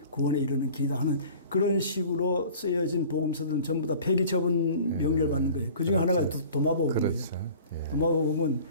구원에 이르는 길이다 하는 그런 식으로 쓰여진 복음서들은 전부 다 폐기 처분 명령을 받는 거예요. 그 중에 하나가 도마복음이에요. 그렇죠. 도마복음은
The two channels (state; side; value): inverted; both; correlation -0.45